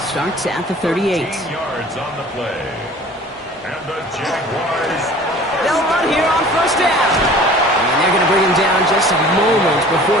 start at the 38. 14 yards on the play. And the Jaguars. They'll run here on first down. And they're going to bring him down just a moment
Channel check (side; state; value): both; normal; correlation 0.46